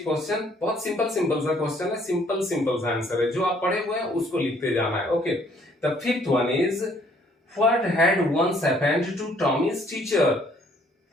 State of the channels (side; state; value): both; normal; correlation 0.63